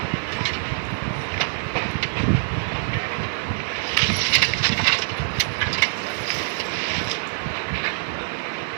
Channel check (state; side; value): silent; left; 62 dB below the other